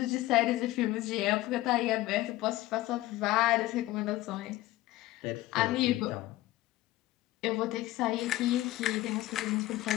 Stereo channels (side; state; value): right; quieter; 16.9 dB